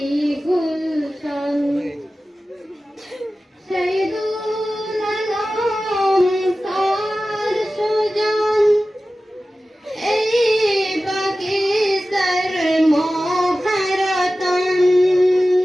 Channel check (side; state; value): both; normal; correlation 0.95